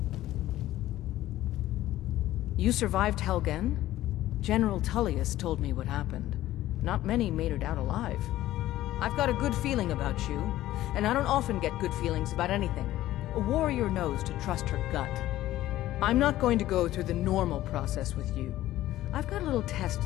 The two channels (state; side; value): quieter; right; 14.7 dB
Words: You survived Helgen? General Tullius told me what happened. Not many made it out alive. I've got a good feeling about you, and I don't often get good feelings about anything. A warrior knows to trust her gut. I'm not going to go through the normal process with you. I've got a little test